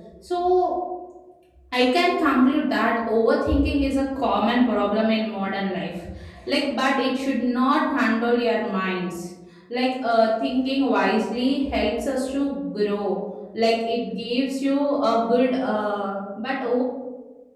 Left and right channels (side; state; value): both; identical; correlation 1.00